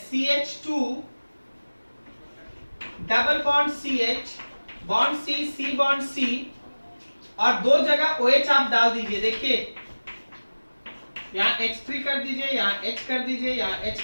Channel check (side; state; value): both; inverted; correlation -1.00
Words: CH2 double bond CH bond C bond C और 2 जगह OH आप डाल दीजिए। देखिए यहाँ H3 कर दीजिए, यहाँ H कर दीजिए, यहाँ H